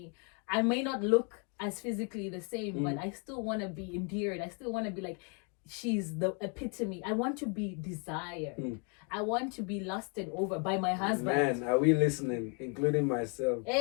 I may not look as physically the same, Mm. but I still want to be endeared. I still want to be like, she's the epitome. I want to be desired. Mm. I want to be lusted over by my husband. Man, are we listening? Including myself.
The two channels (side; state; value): right; quieter; 37.0 dB